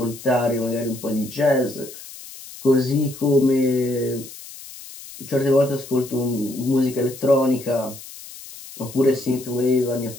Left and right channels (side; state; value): left; noise; hiss, 16 dB below the sound